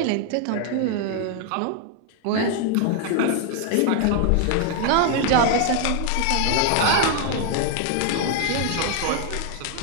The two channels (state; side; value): different; both; correlation 0.00